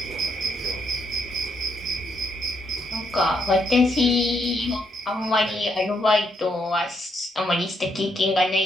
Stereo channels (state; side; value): normal; both; correlation 0.76